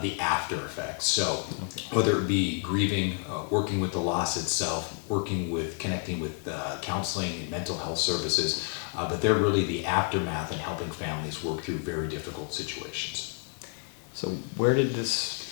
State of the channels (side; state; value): right; quieter; 38.4 dB